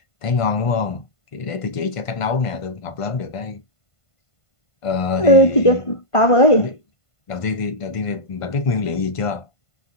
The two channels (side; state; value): right; late; 1.5 ms